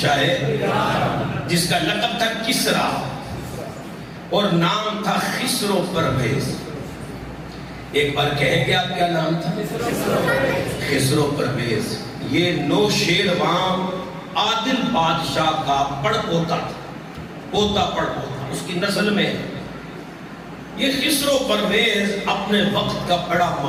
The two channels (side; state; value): both; identical; correlation 1.00